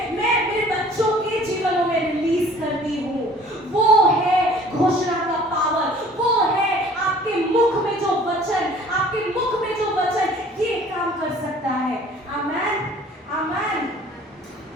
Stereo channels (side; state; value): both; normal; correlation 0.51